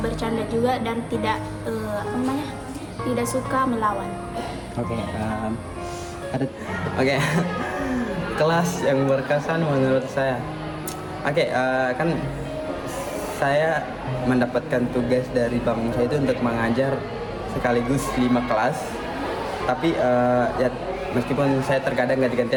juga, dan tidak suka melawan. Oke, Oke. Kelas yang berkesan menurut saya. Oke, kan saya mendapatkan tugas dari bank saya itu untuk mengajar sekaligus 5 kelas. Tapi ya meskipun saya terkadang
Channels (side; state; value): both; identical; correlation 1.00